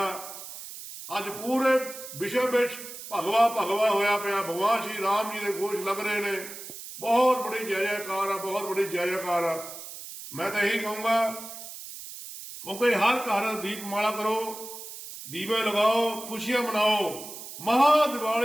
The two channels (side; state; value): right; noise; hiss, 12 dB below the sound